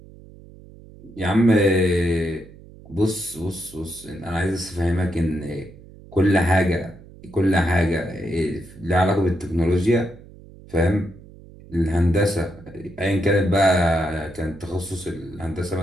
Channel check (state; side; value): noise; right; hum, 20 dB below the sound